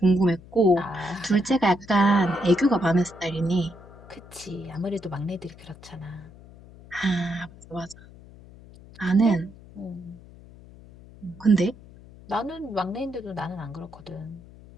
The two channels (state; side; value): noise; left; hum, 20 dB below the sound